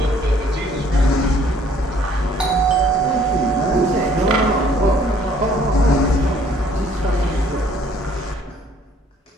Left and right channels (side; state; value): both; normal; correlation 0.60